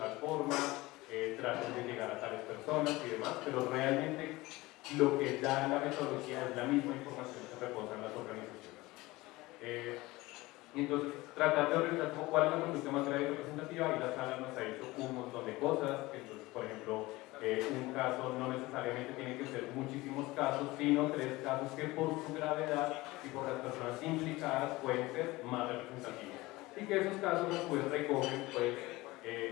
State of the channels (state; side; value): quieter; right; 20.2 dB